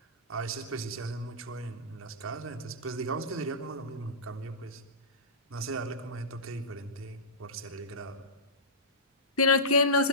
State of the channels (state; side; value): normal; both; correlation -0.18